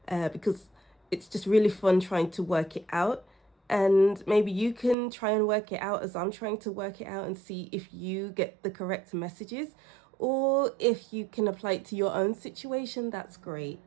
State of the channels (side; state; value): left; drops out; at 5.0 s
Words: because it's just really fun trying to work it out. And maybe you can try and work it out as I'm trying to work it out and see if you get the correct messages, or if you can apply it to your own situation. That's great.